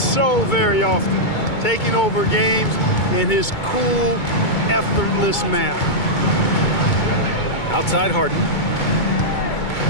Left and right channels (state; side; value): late; right; 2.2 ms